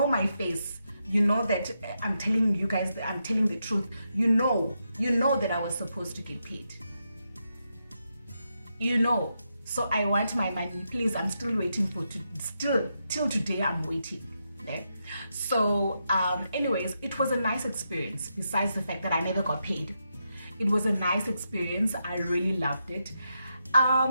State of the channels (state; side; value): inverted; both; correlation -0.84